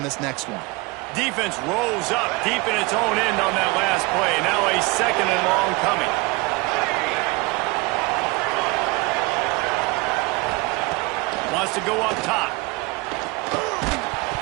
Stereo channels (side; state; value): left; quieter; 24.7 dB